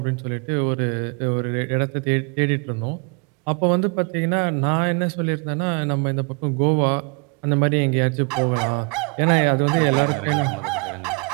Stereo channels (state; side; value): quieter; left; 33.3 dB